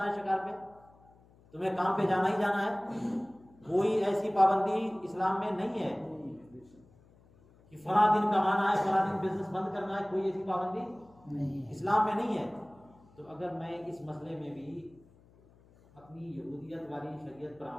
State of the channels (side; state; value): left; noise; hum, 28 dB below the sound